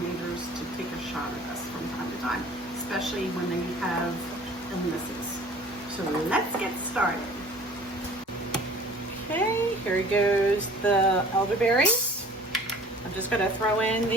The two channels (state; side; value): normal; both; correlation 0.48